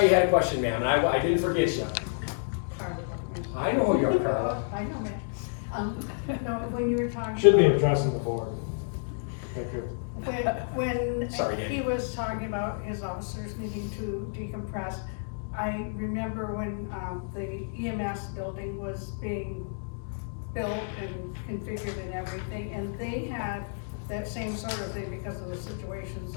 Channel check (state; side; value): silent; right; digital silence